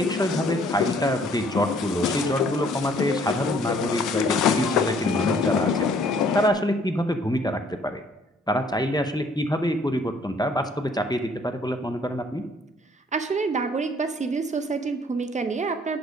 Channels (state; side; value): normal; both; correlation 0.60